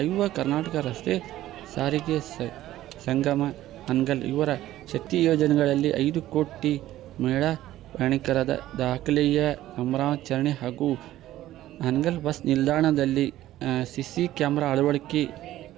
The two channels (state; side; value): quieter; left; 14.3 dB